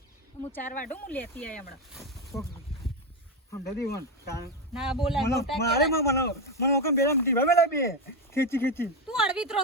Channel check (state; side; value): normal; both; correlation 0.11